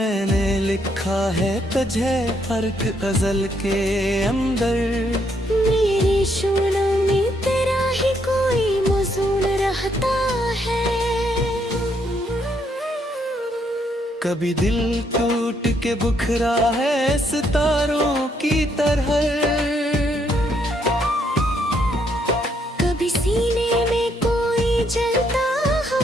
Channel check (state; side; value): normal; both; correlation 0.73